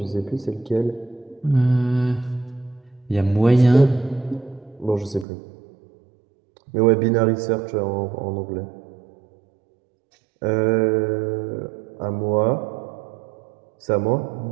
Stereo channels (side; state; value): left; drops out; at 5.2 s